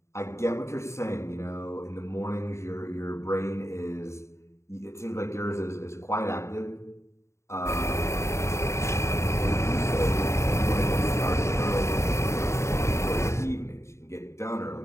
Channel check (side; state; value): right; late; 0.14 ms